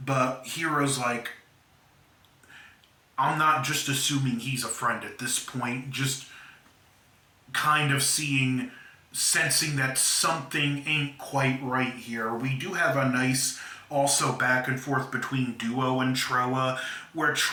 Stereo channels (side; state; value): both; identical; correlation 1.00